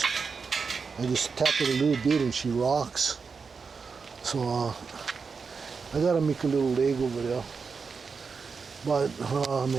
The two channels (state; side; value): quieter; left; 5.2 dB